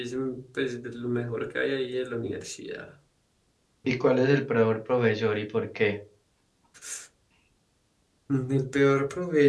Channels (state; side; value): identical; both; correlation 1.00